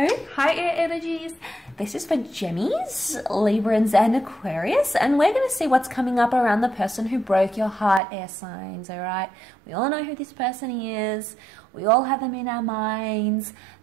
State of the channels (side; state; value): left; drops out; at 8.0 s